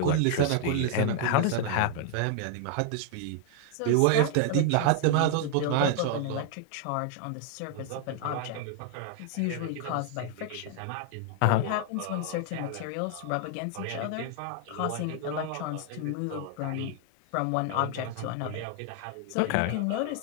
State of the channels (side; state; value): both; different; correlation 0.00